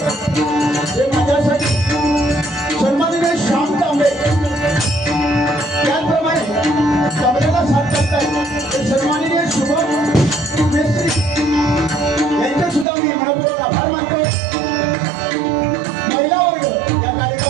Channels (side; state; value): left; drops out; at 12.9 s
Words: माझ्यासाठी सन्माननीय श्याम तांबे, त्याचप्रमाणे तांबेला साथ लागताय ते सन्माननीय शुभम मेस्त्री यांचे सुद्धा मी मनपूर्वक आभार मानतो. महिला वर्ग या